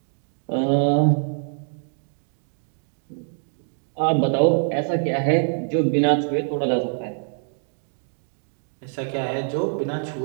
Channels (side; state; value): left; silent; digital silence